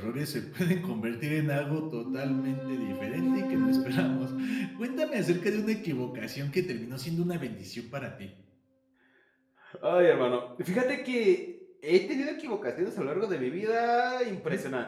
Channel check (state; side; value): identical; both; correlation 1.00